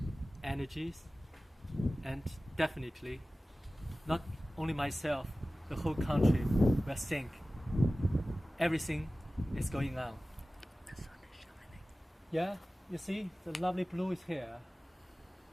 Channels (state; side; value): normal; both; correlation 0.97